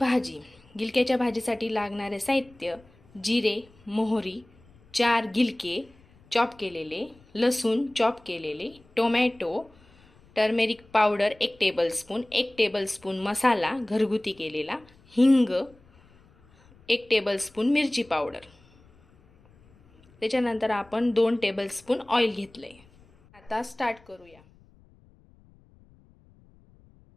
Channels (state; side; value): noise; left; rumble, 28 dB below the sound